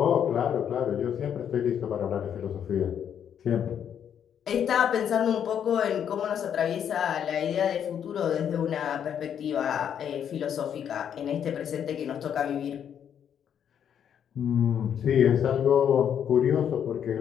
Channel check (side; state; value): right; quieter; 8.8 dB